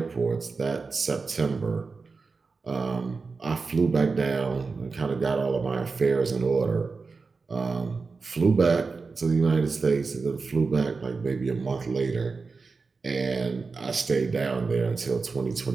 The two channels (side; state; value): left; quieter; 4.4 dB